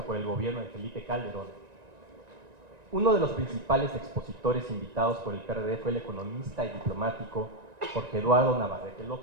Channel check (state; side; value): late; left; 1.9 ms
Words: por el gobierno de Felipe Calderón, uno de los principales expositores invitados por el PRD fue el economista y diplomático Jorge Eduardo Navarrete